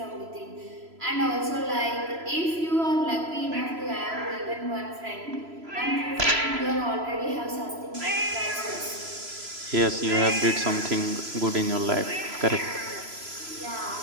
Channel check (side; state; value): left; late; 3.0 ms